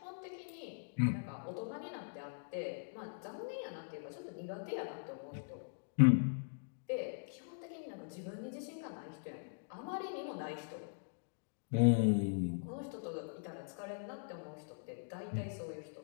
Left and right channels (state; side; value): silent; right; digital silence